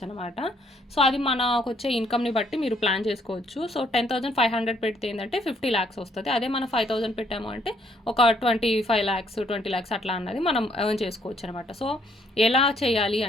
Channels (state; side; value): normal; both; correlation 0.67